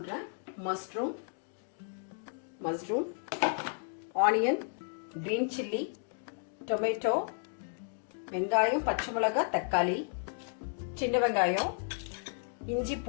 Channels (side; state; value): right; silent; digital silence